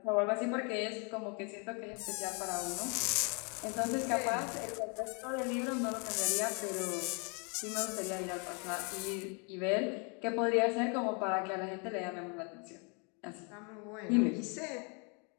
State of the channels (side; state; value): right; quieter; 35.0 dB